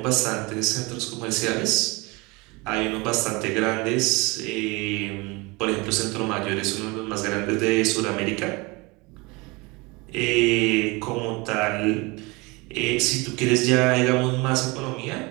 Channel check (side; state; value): left; quieter; 25.5 dB